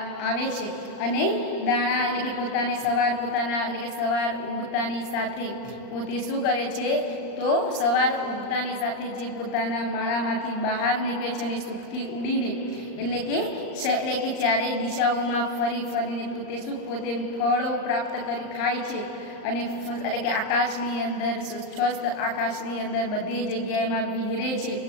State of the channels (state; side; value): late; right; 39 ms